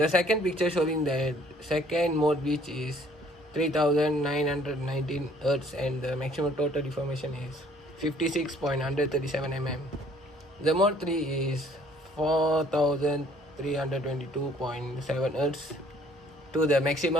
second picture showing the second mode, which is 3919 Hz and the maximum total deformation is 56.137 mm. The mode 3 is 4322.7 Hz to the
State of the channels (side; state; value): both; normal; correlation 0.59